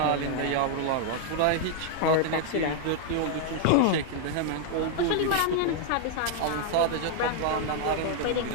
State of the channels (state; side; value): different; both; correlation 0.00